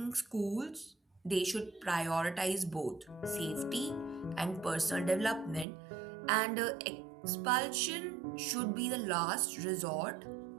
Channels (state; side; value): drops out; left; at 5.7 s